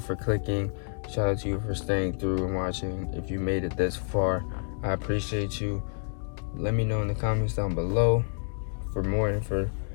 for clicking. Shout out to you for staying through and watching. If you made it this far, I appreciate you. Let me know in the comments down below for more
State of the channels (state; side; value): silent; right; digital silence